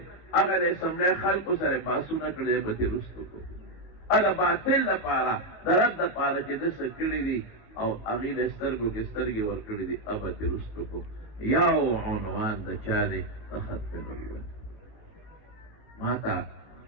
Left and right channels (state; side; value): late; right; 18 ms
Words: هغه د اسمبلی خلکو سره بحثونه کړي دی به درستو کړو د باطل دپاره د رد دپاره چې ده څه کړي دي او هغې د سترګو کې سترګې ورکړي دي به درستو کړو یو عنوان د چا دی د ختم نبوت ما ته